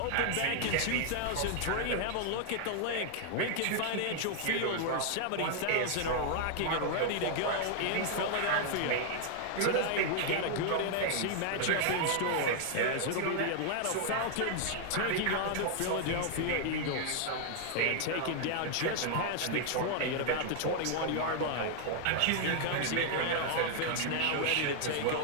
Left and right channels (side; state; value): both; different; correlation 0.00